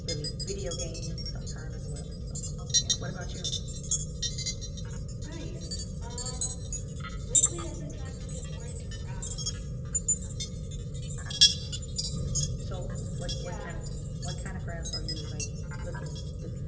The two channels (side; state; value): both; identical; correlation 1.00